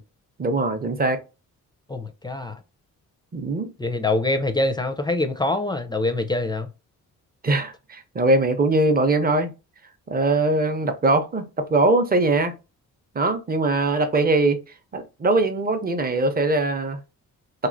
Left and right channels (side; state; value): both; normal; correlation 0.24